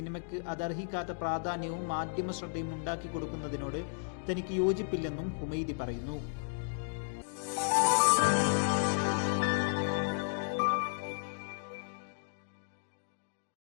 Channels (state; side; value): silent; right; digital silence